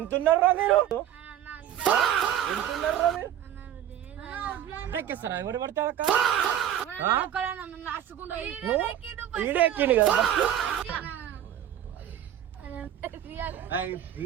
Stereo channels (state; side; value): quieter; left; 10.9 dB